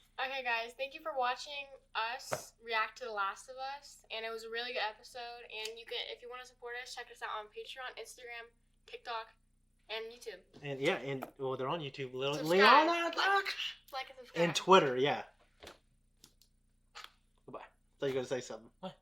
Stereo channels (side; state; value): both; identical; correlation 1.00